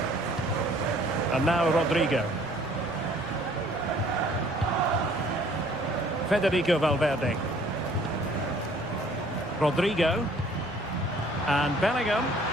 And now Rodrigo. Federico Valverde. Rodrigo. And Bellingham.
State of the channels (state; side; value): noise; right; rumble, 23 dB below the sound